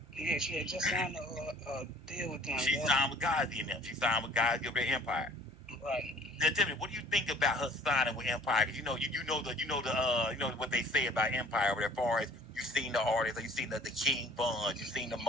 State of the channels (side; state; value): both; normal; correlation 0.52